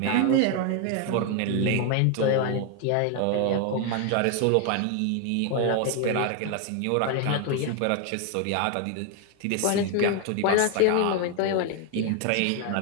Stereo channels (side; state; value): both; different; correlation 0.01